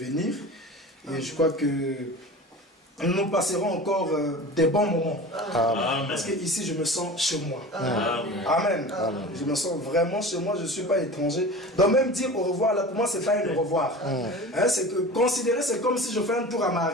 Et je crois que nous passerons encore des bons moments. Amen. Parce que ici je me sens chez moi. Amen. Amen. Je me sens vraiment chez moi, je ne suis pas étranger. Donc même dire au revoir, là pour moi c'est pas un au revoir. Hein, c'est que considérer, c'est comme si je fais un tour à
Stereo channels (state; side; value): normal; both; correlation 0.35